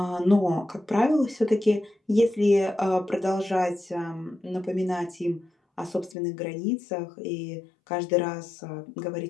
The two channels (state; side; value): drops out; right; at 6.2 s